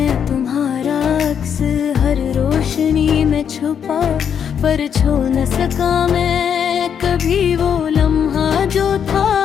तुम्हारा अक्स हर रोशनी में छुपा, पर छू न सका मैं कभी वो लम्हा जो था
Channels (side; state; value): right; quieter; 7.9 dB